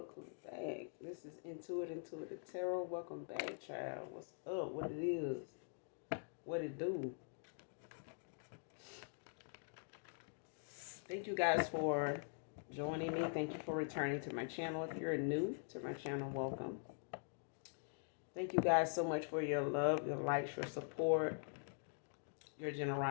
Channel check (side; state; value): right; silent; digital silence